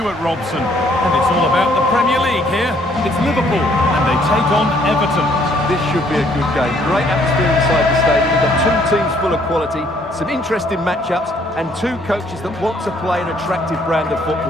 Robson. And it's all about the Premier League here. It's Liverpool and they take on Everton. This should be a good game. Great atmosphere inside the stadium. We've got two teams full of quality, some interesting matchups, and two coaches that want to play an attractive brand of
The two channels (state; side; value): normal; both; correlation 0.65